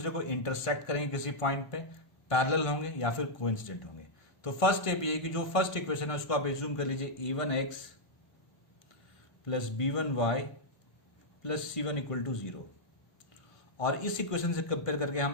को इंटरसेक्ट करेंगे किसी पॉइंट पे, पैरेलल होंगे या फिर कोइंसिडेंट होंगे। तो फर्स्ट स्टेप ये है कि जो फर्स्ट इक्वेशन है उसको आप एज्यूम कर लीजिए a1x plus b1y plus c1 equal to 0। और इस इक्वेशन से कंपेयर करके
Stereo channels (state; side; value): late; right; 1.5 ms